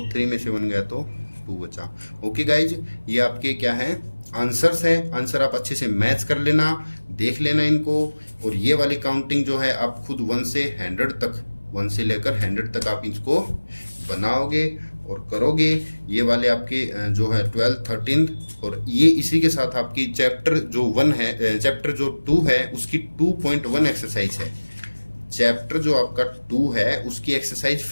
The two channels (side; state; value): both; inverted; correlation -1.00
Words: 3 में से 1 गया तो 2 बचा, ओके गाइज। ये आपके क्या है आंसर्स है, आंसर आप अच्छे से मैच कर लेना, देख लेना इनको, और ये वाली काउंटिंग जो है आप खुद 1 से 100 तक, 1 से लेकर 100 तक आप इसको बनाओगे और करोगे। ये वाले आपके जो है 12th 13th, और ये इसी के साथ आपकी चैप्टर जो 1 है, चैप्टर जो 2 है उसकी 2.1 एक्सरसाइज है, चैप्टर जो आपका 2 है उसकी एक्सरसाइज